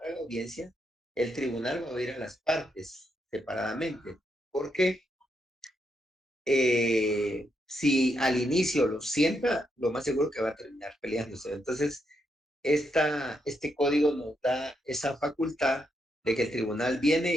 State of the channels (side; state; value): both; normal; correlation 0.80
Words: la audiencia, el tribunal va a oír a las partes separadamente, porque si al inicio lo sienta, lo más seguro que va a terminar peleándose. Entonces, este código nos da esa facultad de que el tribunal